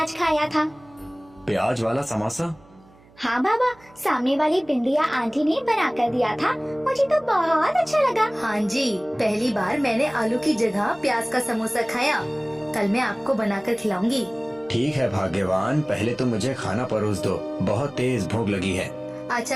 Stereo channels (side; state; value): right; noise; hum, 27 dB below the sound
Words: खाया था। प्याज वाला समोसा? हाँ बाबा, सामने वाली बिंदिया आंटी ने बना कर दिया था, मुझे तो बहुत अच्छा लगा। हाँ जी, पहली बार मैंने आलू की जगह प्याज का समोसा खाया। कल मैं आपको बनाकर खिलाऊंगी। ठीक है भाग्यवान, पहले तो मुझे खाना परोस दो, बहुत तेज भूख लगी है।